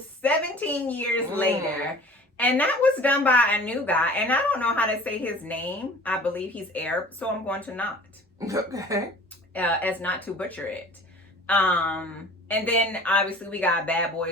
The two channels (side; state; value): both; normal; correlation 0.45